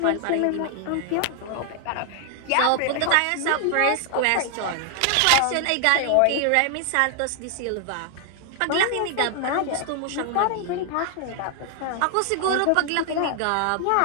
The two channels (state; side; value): different; both; correlation 0.00